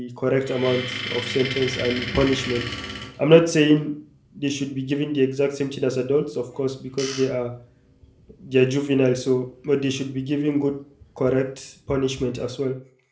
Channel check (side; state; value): both; identical; correlation 1.00